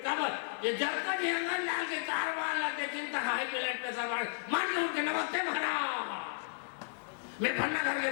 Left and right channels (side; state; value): right; silent; 55 dB below the other